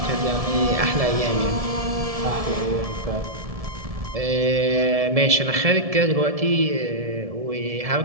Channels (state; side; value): late; left; 1.7 ms